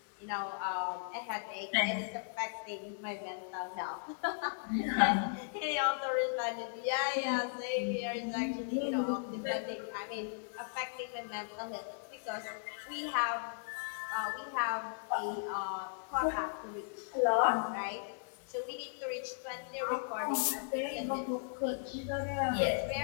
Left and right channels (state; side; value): silent; right; digital silence